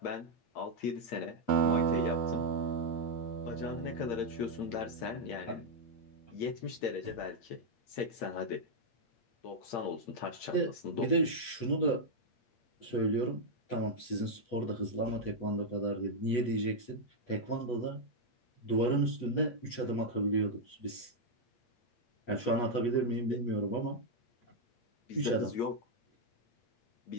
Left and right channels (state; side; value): late; right; 8.2 ms